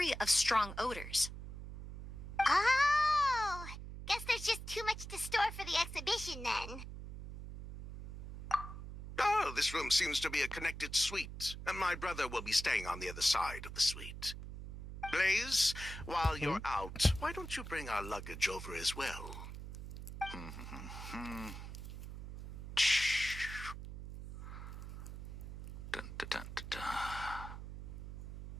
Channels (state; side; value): noise; right; hum, 10 dB below the sound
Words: of strong odors. Oh, guess there's just too much to store for the exhibition then. Oh, this room seems to be a connected suite, and my brother will be staying on the other side of the suite. Blaze, while you're out, why don't you bring our luggage over as well? Dun, dun, dun, dun, dun.